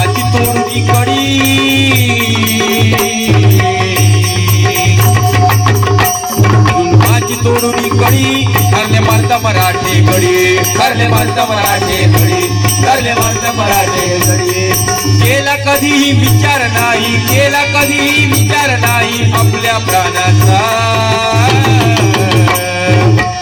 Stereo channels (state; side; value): identical; both; correlation 1.00